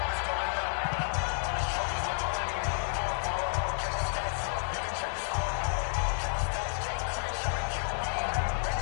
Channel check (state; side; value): silent; right; 57 dB below the other